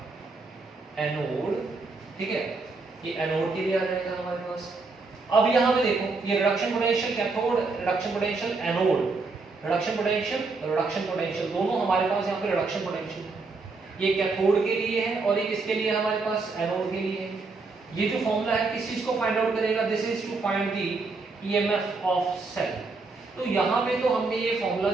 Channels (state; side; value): quieter; left; 3.9 dB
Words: एनोड, ठीक है। ये एनोड के लिए आ जाएगा हमारे पास। अब यहां पे देखो, ये reduction potential cathode, reduction potential anode, reduction potential, reduction potential, दोनों हमारे पास यहाँ पे रिडक्शन पोटेंशियल है। ये कैथोड के लिए है और ये किसके लिए है हमारे पास, एनोड के लिए है। ये जो फॉर्मूला है किस चीज को फाइंड आउट करेगा, this is to find the EMF of cell. तो यहाँ पे तो हमने ये फॉर्मूला